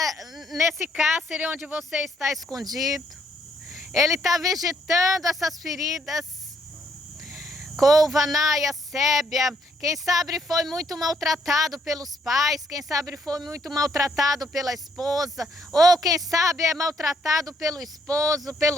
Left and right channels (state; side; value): normal; both; correlation 0.71